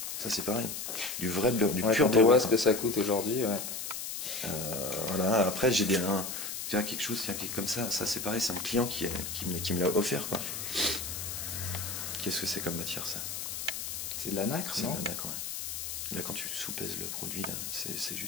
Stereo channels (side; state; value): left; noise; hiss, 5 dB below the sound